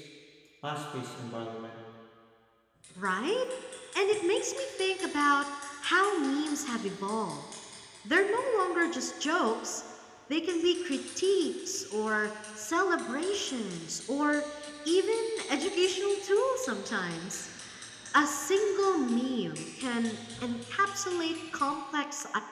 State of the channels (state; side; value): identical; both; correlation 1.00